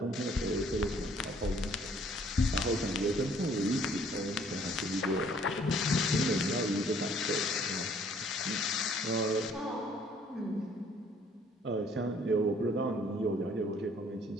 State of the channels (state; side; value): normal; both; correlation 0.60